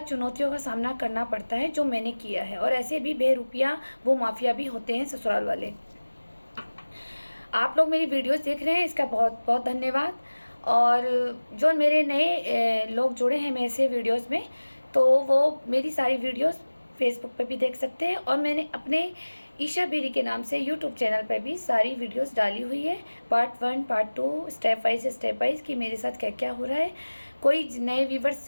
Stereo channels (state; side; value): inverted; both; correlation -1.00